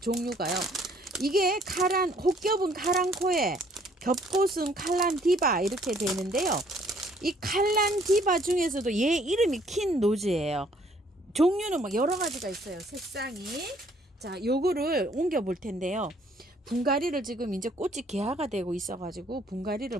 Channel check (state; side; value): normal; both; correlation 0.62